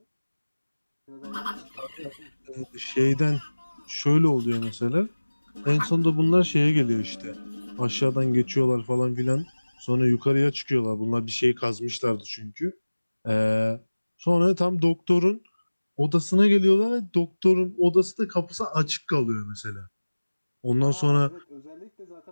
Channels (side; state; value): both; inverted; correlation -1.00